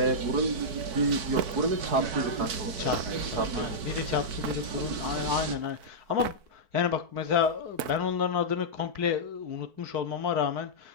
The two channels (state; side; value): late; left; 4.6 ms